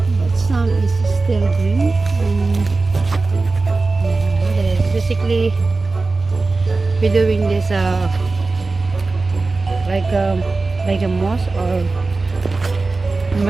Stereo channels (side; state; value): left; quieter; 3.7 dB